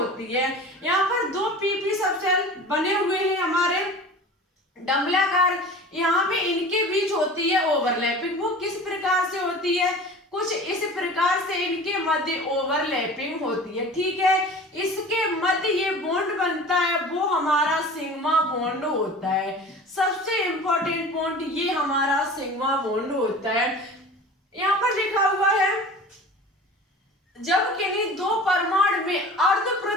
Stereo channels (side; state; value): both; normal; correlation 0.39